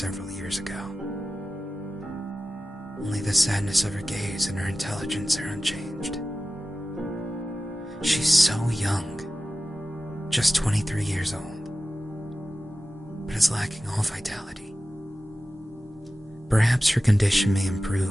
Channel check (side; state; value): both; normal; correlation 0.95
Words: years ago. Only the sadness of her gaze and her intelligence are unchanged. She's so young, just 23 years old, but is lacking all vitality. Perhaps her condition may